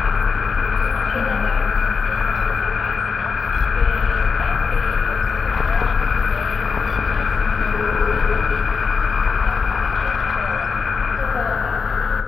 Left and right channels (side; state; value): right; quieter; 5.2 dB